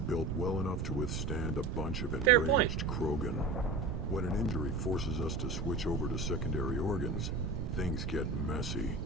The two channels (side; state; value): right; noise; rumble, 3 dB below the sound